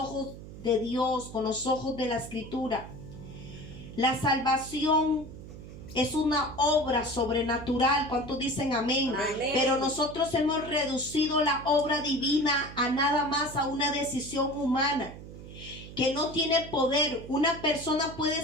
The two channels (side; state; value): right; noise; hum, 14 dB below the sound